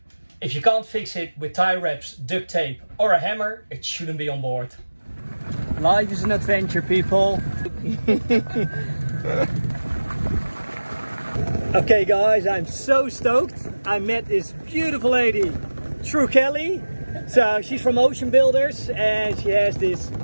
if you can't fix it with tie wraps, duct tape or a hammer, it shouldn't be on board. Life is an adventure, people. Okay guys, I'm so stoked. I met this beautiful lady, True Kelly. So she's from Ocean Builders and she has this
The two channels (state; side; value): inverted; both; correlation -1.00